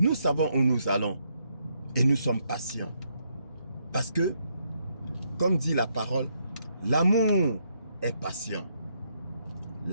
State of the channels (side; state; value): both; inverted; correlation -0.76